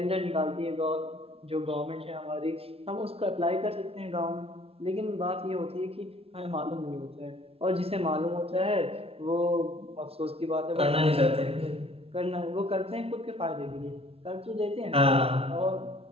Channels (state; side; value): late; left; 0.28 ms